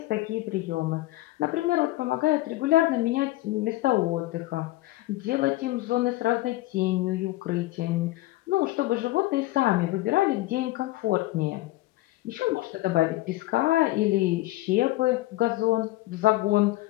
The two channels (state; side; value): quieter; right; 17.9 dB